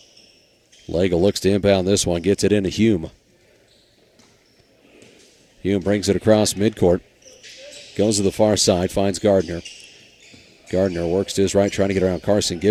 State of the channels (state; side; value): identical; both; correlation 1.00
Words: Legel looks to inbound this one. Gets it into Hume. Hume brings it across midcourt. Goes to the far side. Finds Gardner. Gardner works to his right, trying to get around Carson